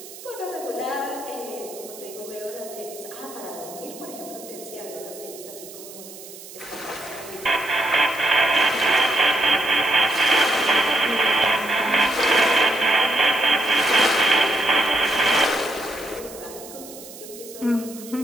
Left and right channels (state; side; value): noise; right; hiss, 16 dB below the sound